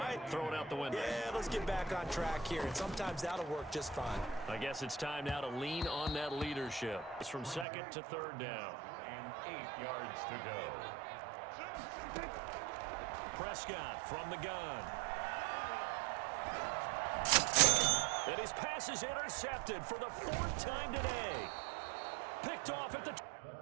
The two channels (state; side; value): drops out; left; at 7.7 s